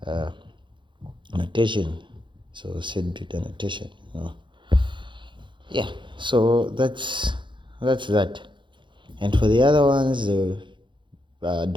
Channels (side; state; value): left; late; 0.23 ms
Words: notation. So set bit annotation. Yeah, so that's that. And for the other ones, the